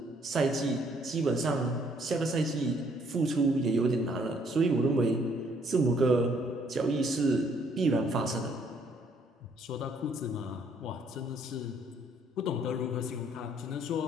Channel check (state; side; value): normal; both; correlation 0.66